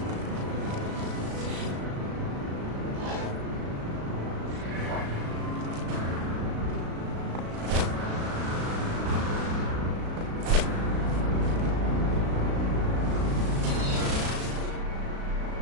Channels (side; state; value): left; late; 36 ms